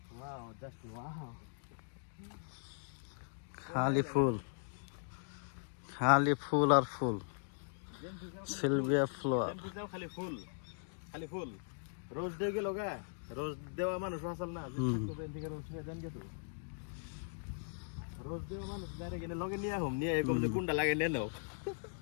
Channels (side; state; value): right; silent; digital silence